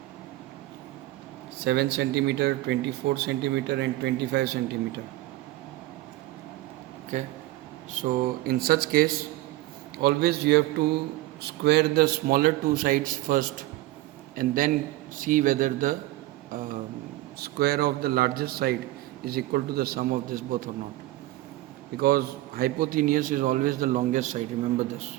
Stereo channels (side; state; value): left; quieter; 17.3 dB